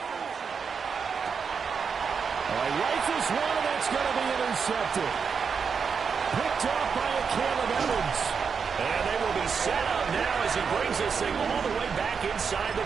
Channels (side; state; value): left; quieter; 6.0 dB